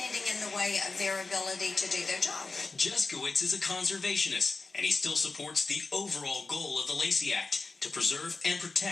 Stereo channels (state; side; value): quieter; right; 3.9 dB